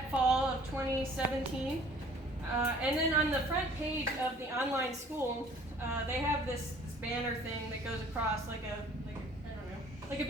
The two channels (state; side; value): normal; both; correlation 0.53